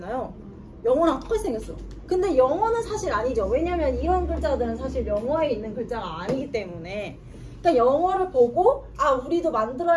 영어랑 똑같이 생겼어. 근데 영어는 사실 아니죠. 왜냐면 이런 글자들은 사실 영어에 있는 글자가 아니기 때문에. 그러니까 영어를 보고 아 우리도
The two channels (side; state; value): both; identical; correlation 1.00